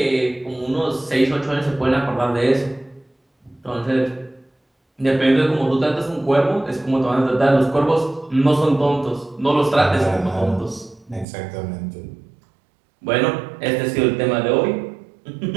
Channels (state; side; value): drops out; left; at 11.2 s